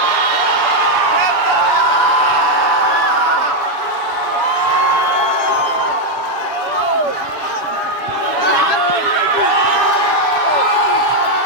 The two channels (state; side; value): late; right; 7.0 ms